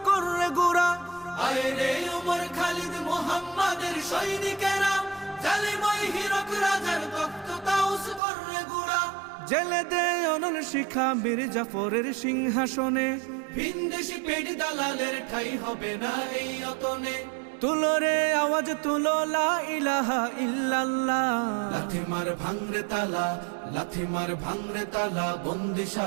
করে গোরা। আয় রে উমর খালিদ মুহাম্মাদের সৈনিকেরা, জালিমাই হিরক রাজার তখ্ত তাউস করে গোরা। জেলে দে অনল শিখা বীর জাফরের সিংহাসনে, ভিনদেশি পেট দালালের ঠাই হবে না এই অতনে। তুলো রে আওয়াজ তুলো লা ইলাহা ইল্লাল্লাহ। লাথি মার ভাঙরে তালা, লাথি মার ভাঙরে তালা,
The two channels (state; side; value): drops out; left; at 8.2 s